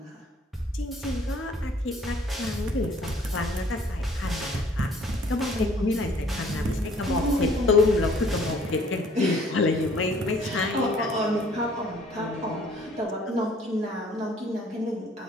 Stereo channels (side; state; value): both; normal; correlation 0.58